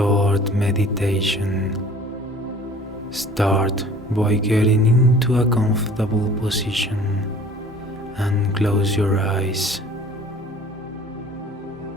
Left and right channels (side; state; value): both; normal; correlation 0.48